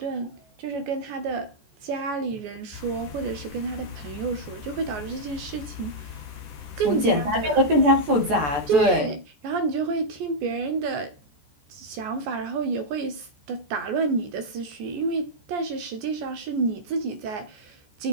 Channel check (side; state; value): left; late; 14 ms